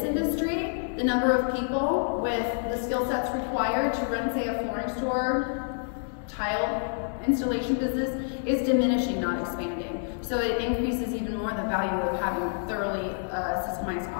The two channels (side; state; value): right; silent; digital silence